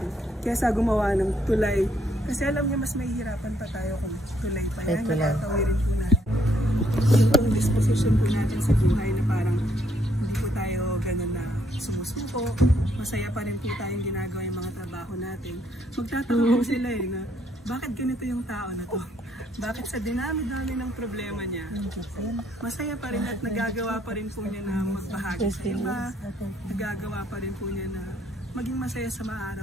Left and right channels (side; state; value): both; normal; correlation 0.69